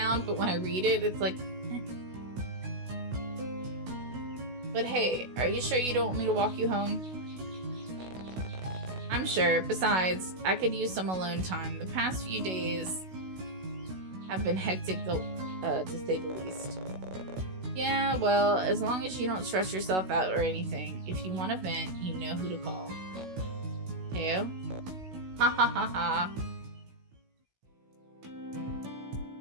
but when I read it, it's like... But hey, are you sure you don't want me to walk you home? I'm sure. Besides, I could use some alone time. The past few days have been hectic, to say the least. Yeah, well, as long as you don't stress yourself out or anything, if you want to vent, you know who to call. Teo? Ha ha ha ha.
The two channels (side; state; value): left; late; 16 ms